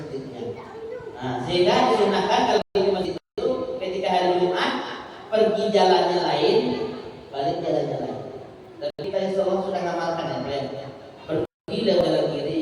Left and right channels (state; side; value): identical; both; correlation 1.00